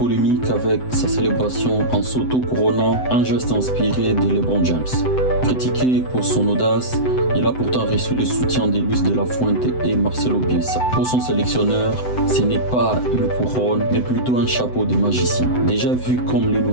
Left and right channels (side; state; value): right; late; 7.9 ms